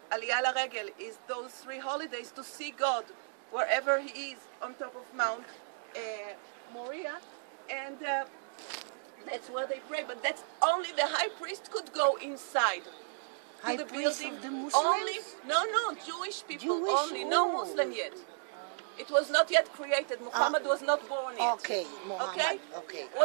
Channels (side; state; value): left; silent; digital silence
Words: Aliyah LaRegel is those 3 holidays to see God wherever he is on top of Mount Moriah, and that's where they pray. But that's only the high priest could go inside. to the priest building of the Muslims? only, no, Jewish people Jewish? only, no Muslim yet. It was not yet created. Muhammad was not born yet. Okay, Muhammad. Okay? Okay.